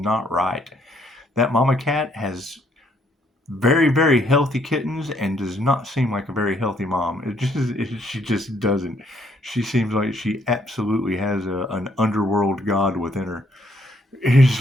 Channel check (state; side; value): normal; both; correlation 0.68